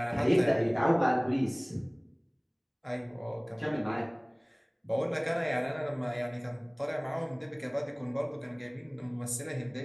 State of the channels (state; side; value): identical; both; correlation 1.00